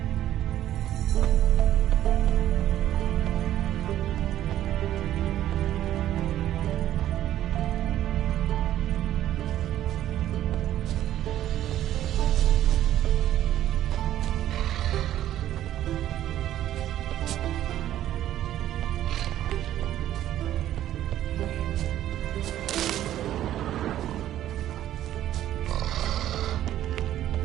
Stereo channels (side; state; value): left; quieter; 12.4 dB